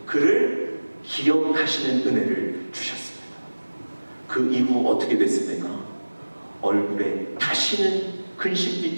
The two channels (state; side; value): inverted; both; correlation -1.00